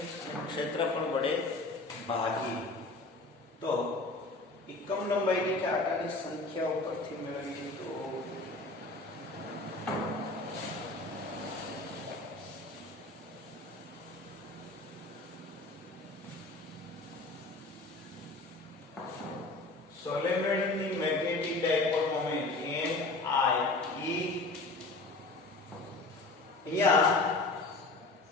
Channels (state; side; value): quieter; right; 3.2 dB